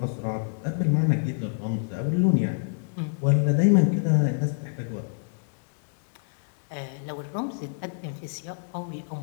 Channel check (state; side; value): silent; right; 59 dB below the other